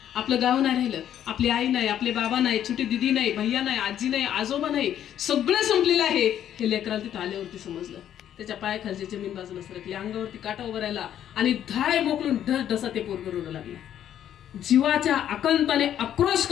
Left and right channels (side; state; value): right; quieter; 10.5 dB